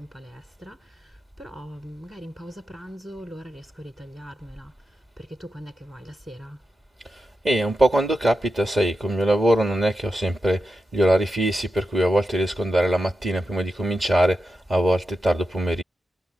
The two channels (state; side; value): normal; both; correlation 0.90